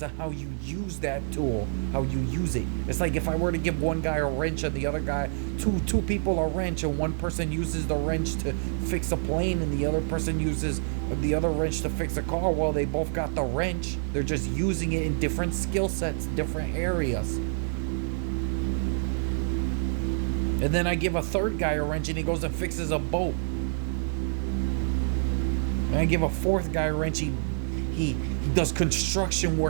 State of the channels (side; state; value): left; silent; 58 dB below the other